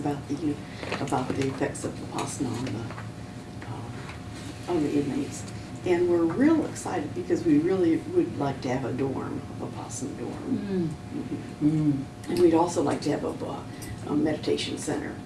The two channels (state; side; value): identical; both; correlation 1.00